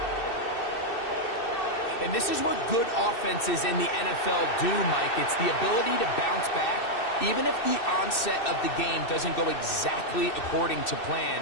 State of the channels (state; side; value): late; right; 2.6 ms